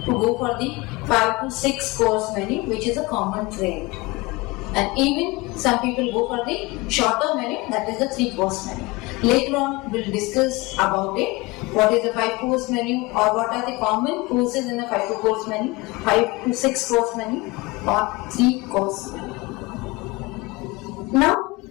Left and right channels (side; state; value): right; quieter; 23.2 dB